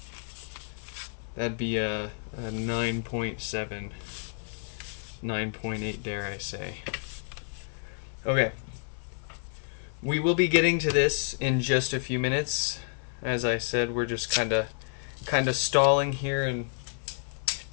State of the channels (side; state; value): right; silent; digital silence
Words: That'd be a 9.7, 9.8, dare I say. Okay. We will be getting to this in just a few minutes. As I said, we're just kind of stalling here and